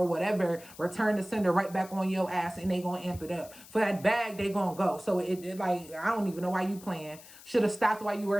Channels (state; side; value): noise; left; hiss, 19 dB below the sound